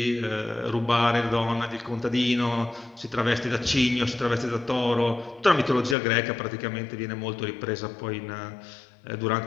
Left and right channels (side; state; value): right; drops out; at 6.0 s